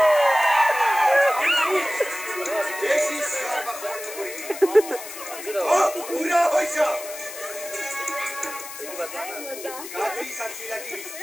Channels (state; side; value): noise; left; hiss, 11 dB below the sound